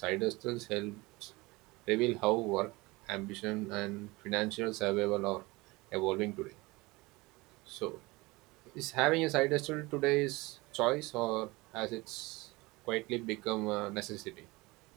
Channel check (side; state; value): left; quieter; 22.8 dB